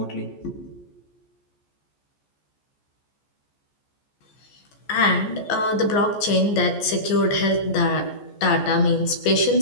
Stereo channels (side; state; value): right; late; 14 ms